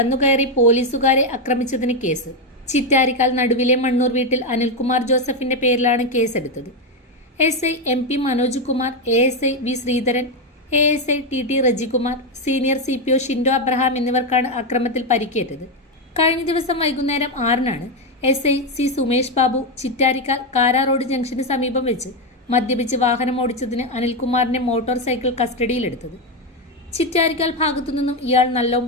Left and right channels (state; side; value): normal; both; correlation 0.07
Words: പോലീസുകാരെ ആക്രമിച്ചതിന് കേസ്. ചിറ്റാരിക്കാൽ നടുവിലെ മണ്ണൂർ വീട്ടിൽ അനിൽകുമാർ ജോസഫിന്റെ പേരിലാണ് കേസെടുത്തത്. SI MP Manoj Kumar, ASI V Sreedharan, ASI TT Rejikumar, senior CPO Shindo Abraham എന്നിവർക്കാണ് അക്രമത്തിൽ പരിക്കേറ്റത്. കഴിഞ്ഞ ദിവസം വൈകുന്നേരം 6-നാണ് SI C Sumesh Babu Chittarikkal Kara road ജംഗ്ഷന് സമീപം വെച്ച് മദ്യപിച്ച് വാഹനം ഓടിച്ചതിന് അനിൽകുമാറിന്റെ മോട്ടോർ സൈക്കിൾ കസ്റ്റഡിയിലെടുത്തത്. ചിറ്റാരിക്കാൽ ഭാഗത്തുനിന്നും ഇയാൾ